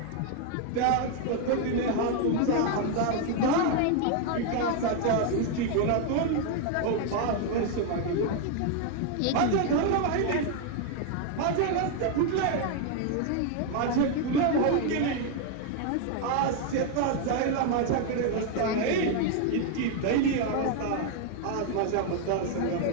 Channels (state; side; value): different; both; correlation 0.01